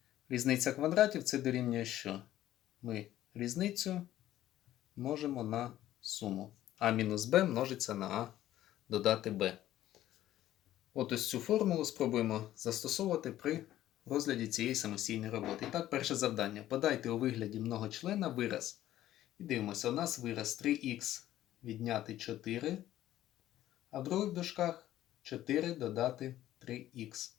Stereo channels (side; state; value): right; quieter; 13.5 dB